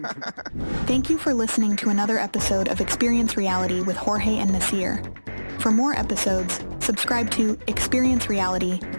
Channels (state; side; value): inverted; both; correlation -1.00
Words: Thank you for listening to another episode of Experience Reality with Jorge and Nasir. For more episodes, subscribe to Experience Reality